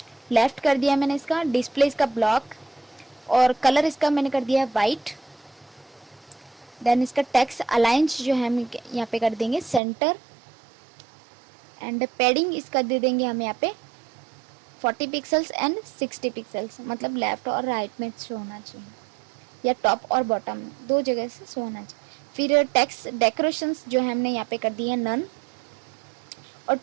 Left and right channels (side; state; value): left; drops out; at 9.8 s